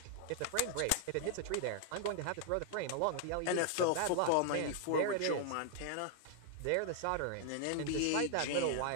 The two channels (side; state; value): both; different; correlation 0.00